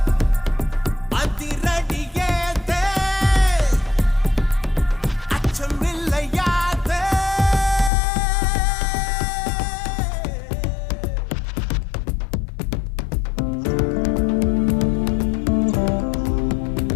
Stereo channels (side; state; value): right; drops out; at 7.9 s